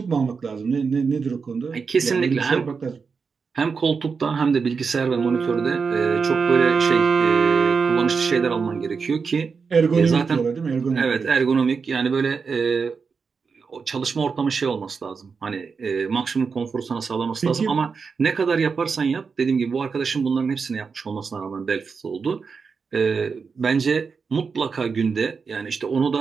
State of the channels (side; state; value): left; quieter; 5.3 dB